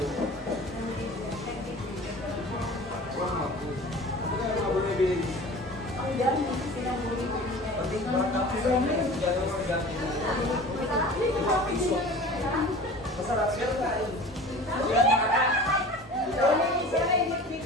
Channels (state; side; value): normal; both; correlation 0.40